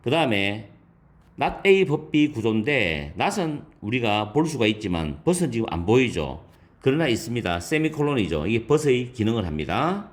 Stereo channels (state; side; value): identical; both; correlation 1.00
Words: 그 다음에 not A but B 구조인데 not은 우리가 볼 수가 있지만 but은 지금 안 보이죠. 그러나 있습니다. 세미콜론이죠. 이게 but의 기능을 합니다.